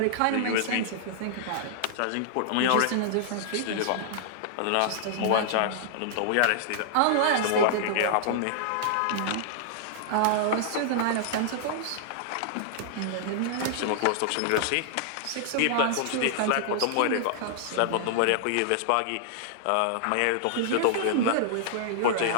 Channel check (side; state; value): both; different; correlation -0.01